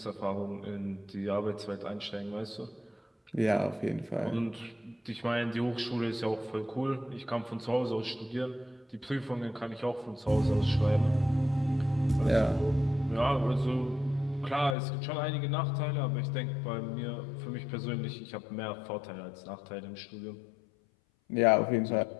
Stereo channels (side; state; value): right; drops out; at 14.8 s